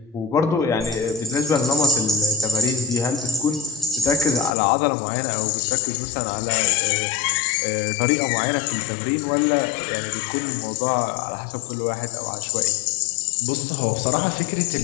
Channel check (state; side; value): drops out; right; at 4.5 s